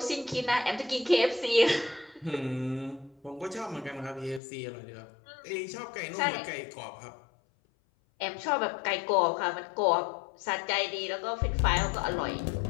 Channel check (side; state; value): right; drops out; at 4.4 s